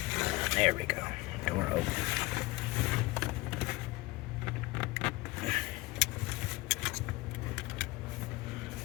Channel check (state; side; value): quieter; right; 21.1 dB